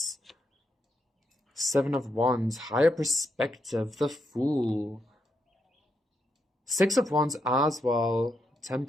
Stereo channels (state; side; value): normal; both; correlation 0.80